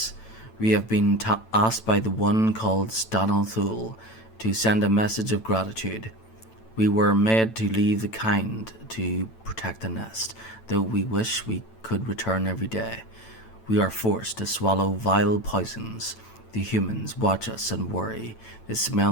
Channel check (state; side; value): late; right; 9.0 ms